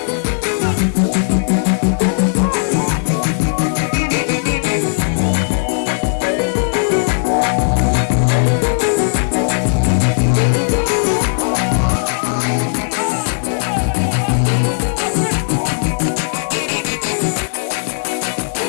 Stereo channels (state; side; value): silent; right; 69 dB below the other